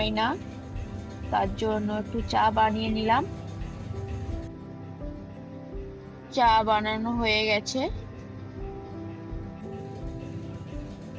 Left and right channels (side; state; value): both; identical; correlation 1.00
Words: না, তার জন্য একটু চা বানিয়ে নিলাম। চা বানানো হয়ে গেছে।